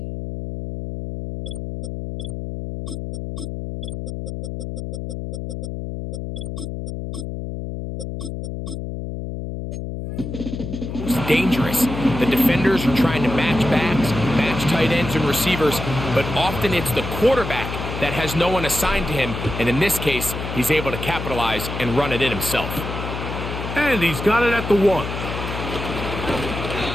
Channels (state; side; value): noise; left; hum, 6 dB below the sound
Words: dangerous. The defenders are trying to match backs, match tight ends and receivers, but often it's the quarterback that has no one assigned to him, and in this case, he's able to capitalize and run it in himself. And he's got it at the 1.